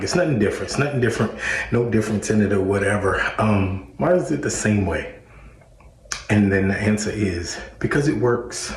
it's nothing different. It's nothing different, no difference in it or whatever. Why is it the same way? And then the answer is because it works.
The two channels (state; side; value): identical; both; correlation 1.00